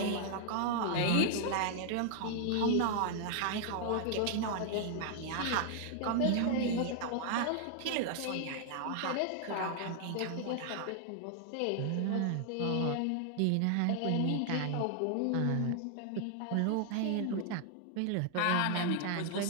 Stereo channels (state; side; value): different; both; correlation 0.00